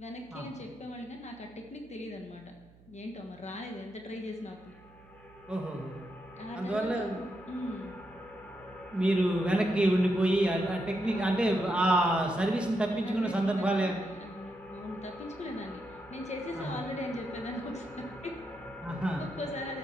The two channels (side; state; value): right; noise; hum, 25 dB below the sound